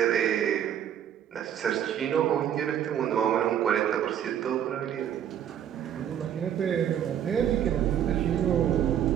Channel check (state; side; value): quieter; left; 9.8 dB